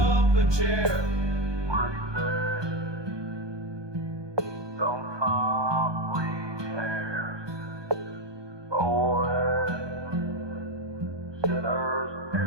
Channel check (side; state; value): left; late; 1.2 ms